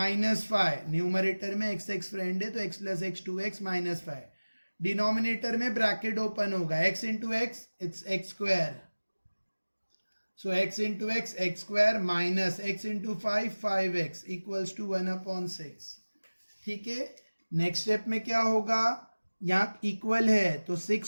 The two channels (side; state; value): both; inverted; correlation -1.00